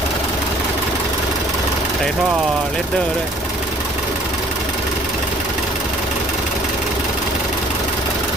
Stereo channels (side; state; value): both; normal; correlation 0.56